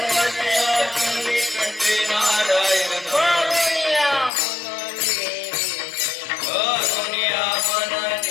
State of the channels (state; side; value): drops out; right; at 4.3 s